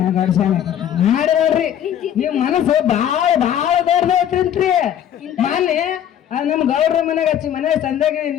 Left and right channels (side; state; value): right; quieter; 10.1 dB